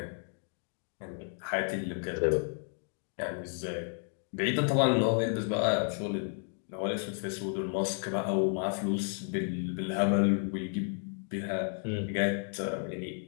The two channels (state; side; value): silent; right; 56 dB below the other